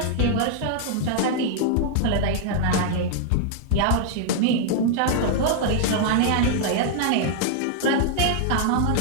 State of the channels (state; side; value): different; both; correlation -0.01